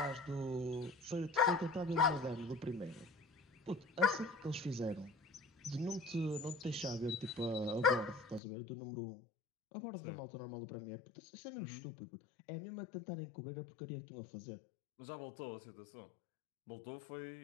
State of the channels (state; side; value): drops out; right; at 8.4 s